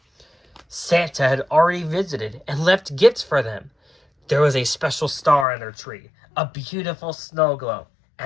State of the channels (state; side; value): drops out; right; at 5.5 s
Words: Santa had already visited and left gifts for them. There was a special star on their tree, a beautiful snow globe,